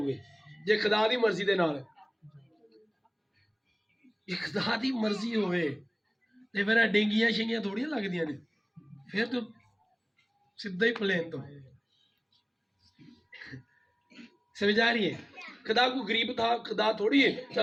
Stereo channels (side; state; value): both; identical; correlation 1.00